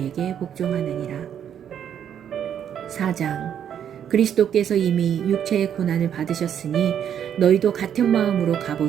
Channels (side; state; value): left; quieter; 9.1 dB